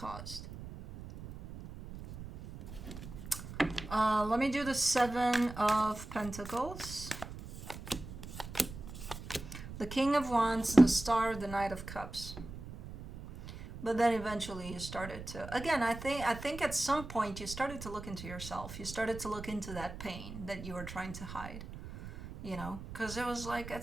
Let me do the Seven of Pentacles, the King of Wands, the Star, the Knight of Cups. But then eventually you started to, again, I think at some point you started to look into yourself. You started to look into that pain that you were trying to hide, you know, because it was like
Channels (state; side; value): noise; right; rumble, 11 dB below the sound